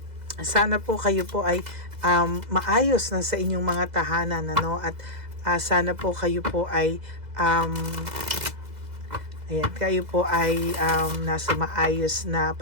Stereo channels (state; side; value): late; left; 2.0 ms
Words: sana po kayo po ay maayos na sa inyong mga tahanan, ano, at sana po kayo po ay kayo po ay nasa maayos na